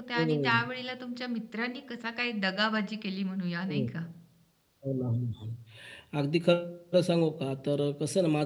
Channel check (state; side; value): identical; both; correlation 1.00